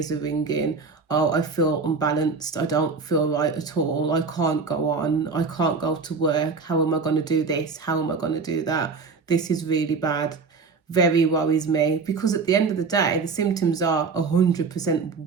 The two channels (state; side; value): quieter; left; 4.8 dB